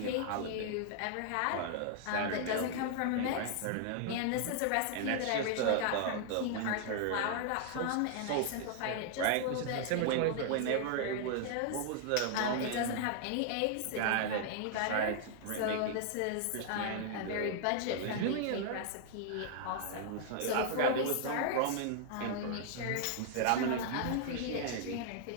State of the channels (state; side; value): different; both; correlation 0.00